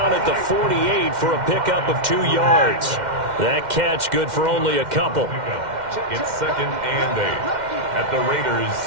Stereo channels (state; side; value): late; left; 2.1 ms